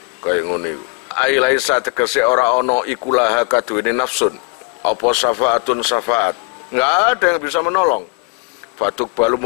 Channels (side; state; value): right; quieter; 32.2 dB